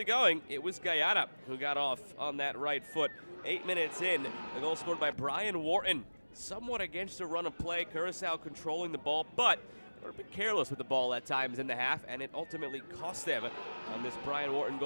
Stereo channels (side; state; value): both; inverted; correlation -1.00